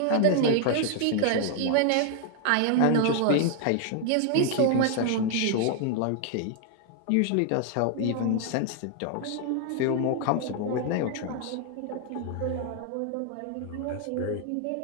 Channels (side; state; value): both; different; correlation 0.00